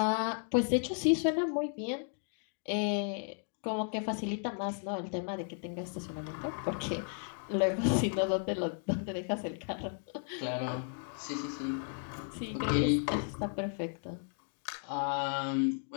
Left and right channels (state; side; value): silent; right; 55 dB below the other